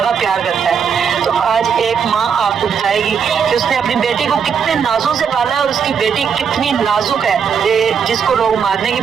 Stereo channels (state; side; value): quieter; left; 6.9 dB